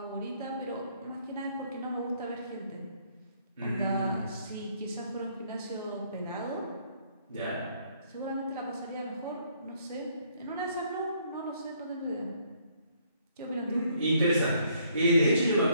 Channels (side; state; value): both; inverted; correlation -0.67